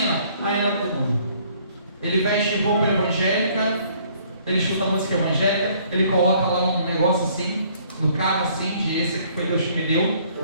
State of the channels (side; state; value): both; inverted; correlation -0.61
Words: ainda é do mundo. Ele veste roupa evangélica, ele escuta música evangélica, ele coloca lá um negócio assim, no carro assim, de esse que foi Deus que me deu,